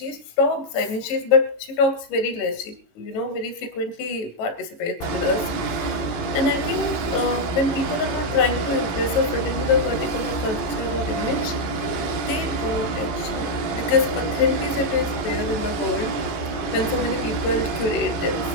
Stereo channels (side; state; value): right; late; 18 ms